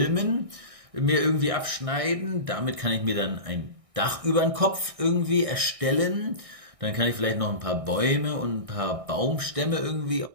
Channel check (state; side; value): late; left; 1.6 ms